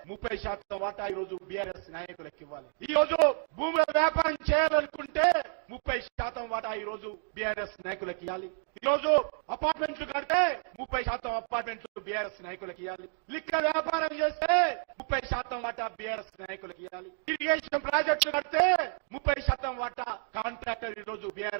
30% వాటా ఈ రోజు బీఆర్ఎస్ నాయకులకు ఇవ్వాలి. ఈ రోజు భూముల వ్యాపారం చేయాలనుకుంటే 30% వాటా ఈ రోజు బీఆర్ఎస్ నాయకులకు ఇవ్వాలి. ఈ రోజు అపార్ట్మెంట్లు కడితే 30% అపార్ట్మెంట్లు బీఆర్ఎస్ నాయకులకు ఇవ్వాలి. లిక్కర్ వ్యాపారం చేస్తే 30% వాటా బీఆర్ఎస్ నాయకులకు ఇవ్వాలి. ఇరిగేషన్ ప్రాజెక్టులు కడితే 30% వాటా కాంట్రాక్టర్ ఈ రోజు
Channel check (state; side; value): silent; left; 57 dB below the other